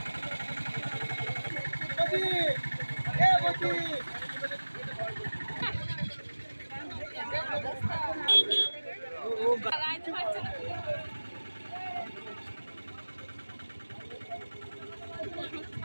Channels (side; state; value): both; inverted; correlation -1.00